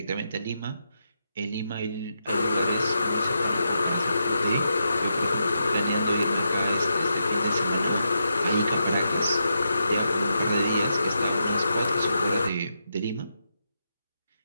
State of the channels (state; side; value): inverted; both; correlation -0.84